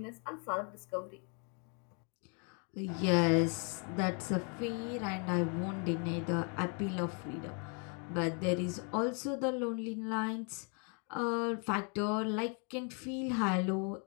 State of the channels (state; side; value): quieter; right; 38.1 dB